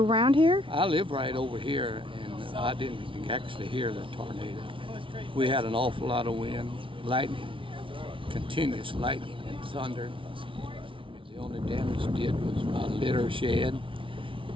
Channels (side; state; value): left; late; 0.25 ms